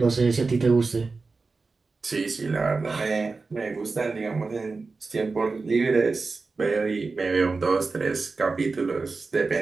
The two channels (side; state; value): left; quieter; 4.1 dB